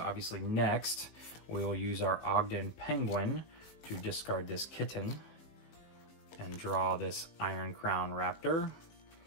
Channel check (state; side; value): late; right; 18 ms